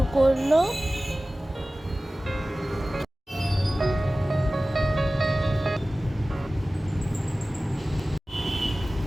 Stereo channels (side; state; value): both; normal; correlation 0.97